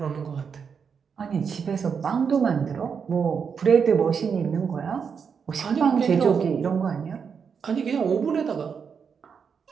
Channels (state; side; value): quieter; left; 6.4 dB